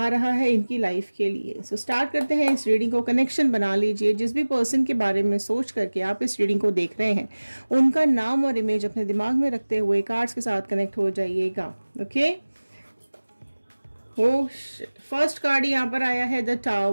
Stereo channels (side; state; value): both; inverted; correlation -1.00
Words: रहा है इनकी लाइफ के लिए। सो स्टार्ट करते हैं इस रीडिंग को। कनेक्शन बना लीजिए। जिस भी पर्सन के बारे में सोच करके आप इस रीडिंग को देख रहे हैं, उनका नाम और इमेज अपने दिमाग में रखते हुए कार्ड्स के साथ कनेक्ट हो जाइएगा। ओके, फर्स्ट कार्ड यहाँ पर आया है द